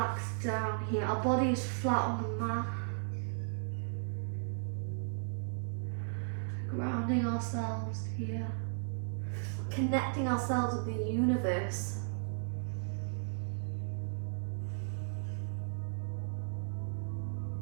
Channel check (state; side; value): silent; left; digital silence